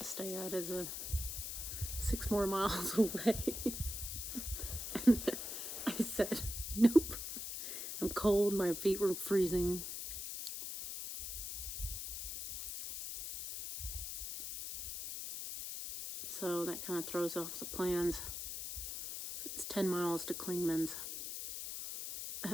stay at is 6 more miles away. And I said, nope. I'm cold, my feet were freezing. So that kind of throws off the plans. It's 10 miles to Clingmans.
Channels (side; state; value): left; noise; hiss, 5 dB below the sound